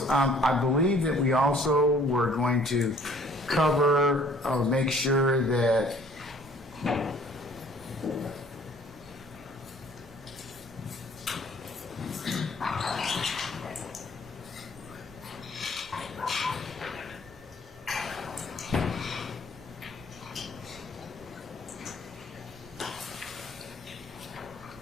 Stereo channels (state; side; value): normal; both; correlation 0.56